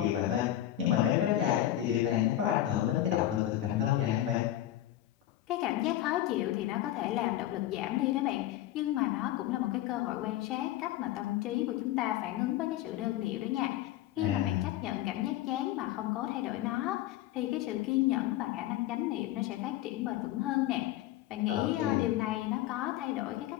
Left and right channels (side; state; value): right; quieter; 13.6 dB